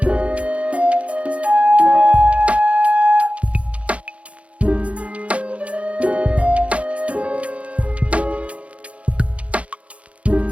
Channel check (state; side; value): late; left; 0.063 ms